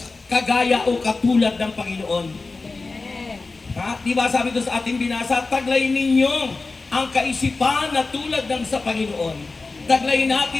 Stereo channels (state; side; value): quieter; right; 3.8 dB